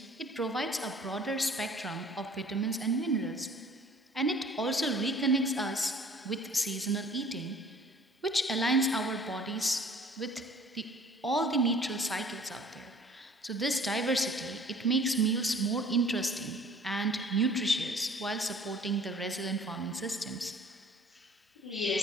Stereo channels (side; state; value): both; normal; correlation 0.52